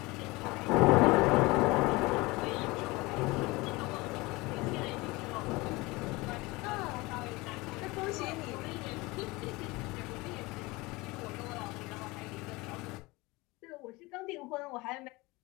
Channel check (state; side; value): quieter; right; 22.9 dB